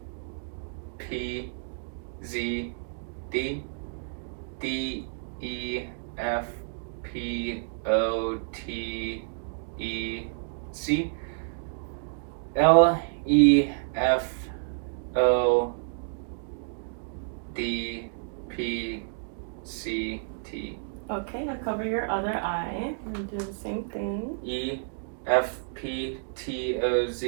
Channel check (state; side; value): silent; left; digital silence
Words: P, Z, D, D, E, F, P, O, T, E, C, L, E, F, O, D, P, C, T. Okay, now cover your other eye and do the same thing. E, F, P, T, O,